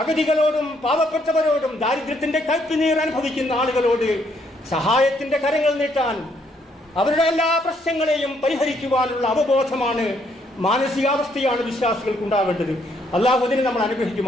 പാവപ്പെട്ടവരോടും ദാരിദ്ര്യത്തിൻ്റെ കയ്പുനീർ അനുഭവിക്കുന്ന ആളുകളോട് സഹായത്തിൻ്റെ കരങ്ങൾ നീട്ടാൻ, അവരുടെ എല്ലാ പ്രശ്നങ്ങളെയും പരിഹരിക്കുവാനുള്ള അവബോധമാണ്, മാനസികാവസ്ഥയാണ് വിശ്വാസികൾക്കുണ്ടാകേണ്ടത്. അള്ളാഹു അതിനെ നമ്മൾ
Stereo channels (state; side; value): normal; both; correlation 0.71